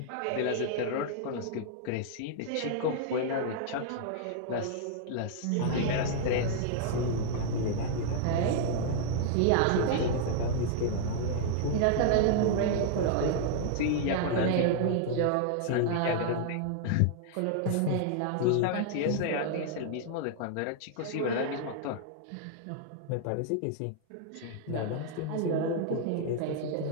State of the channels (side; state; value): both; different; correlation -0.01